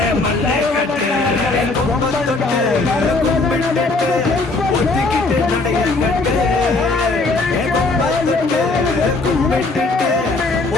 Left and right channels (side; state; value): right; quieter; 3.4 dB